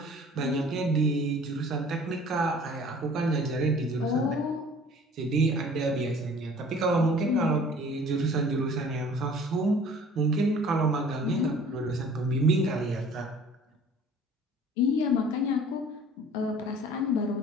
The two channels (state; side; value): normal; both; correlation 0.49